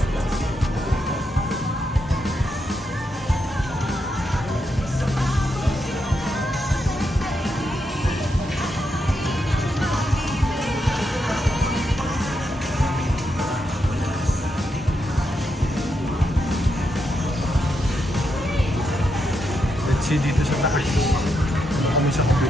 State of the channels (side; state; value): both; normal; correlation 0.82